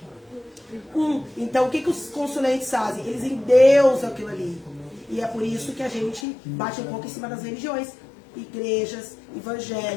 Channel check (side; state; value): right; drops out; at 6.2 s